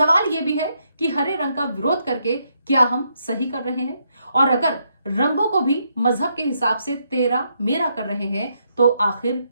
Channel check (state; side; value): inverted; both; correlation -0.77